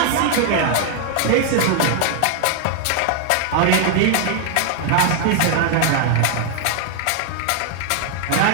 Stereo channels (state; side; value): different; both; correlation 0.00